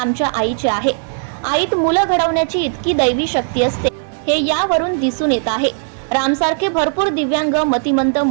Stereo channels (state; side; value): silent; left; digital silence